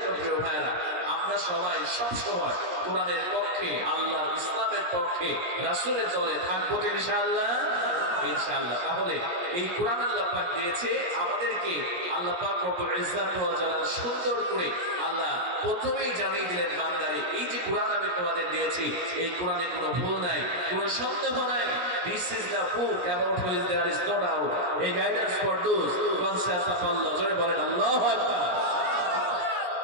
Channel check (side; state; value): left; late; 17 ms